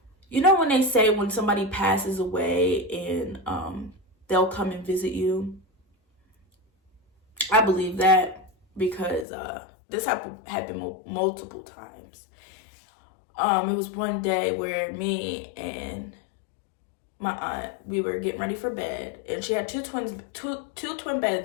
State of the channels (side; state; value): right; drops out; at 9.2 s